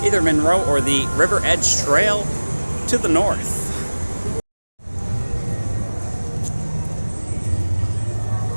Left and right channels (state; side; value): inverted; both; correlation -1.00